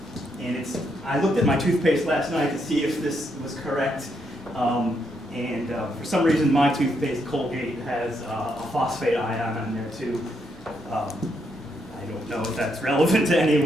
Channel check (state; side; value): normal; both; correlation 0.77